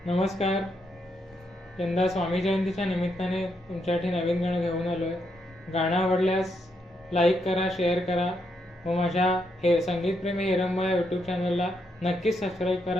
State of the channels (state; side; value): normal; both; correlation 0.79